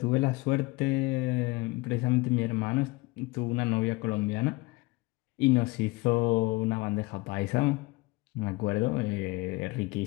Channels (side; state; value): right; quieter; 23.0 dB